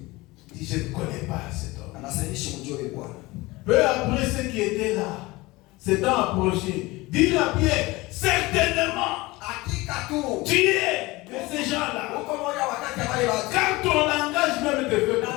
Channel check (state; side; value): quieter; right; 21.5 dB